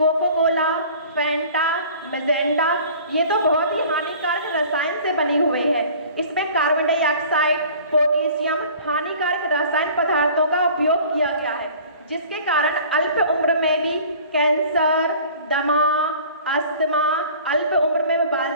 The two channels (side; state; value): both; inverted; correlation -0.46